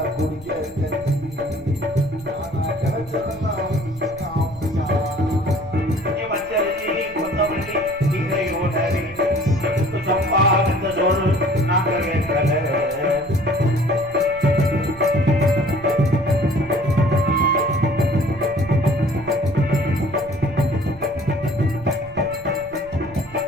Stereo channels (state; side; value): noise; right; rumble, 21 dB below the sound